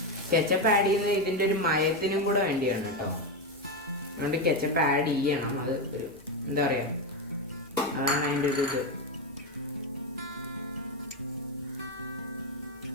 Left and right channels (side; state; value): left; noise; hum, 28 dB below the sound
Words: കെച്ചപ്പ് ആഡ് ചെയ്യുന്നത് ഇതിൻ്റെ ഒരു മയത്തിനും കൂടെ വേണ്ടിയാണ് കേട്ടോ. അതുകൊണ്ട് കെച്ചപ്പ് ആഡ് ചെയ്യണം. അത് ഒരു എന്താ പറയുക, അതാണ് അതിൻ്റെ ഒരു ഇത്.